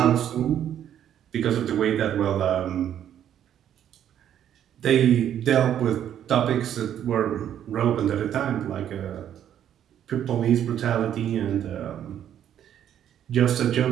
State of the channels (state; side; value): quieter; left; 10.2 dB